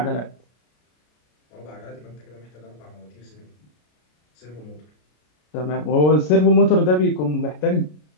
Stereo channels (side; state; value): right; late; 33 ms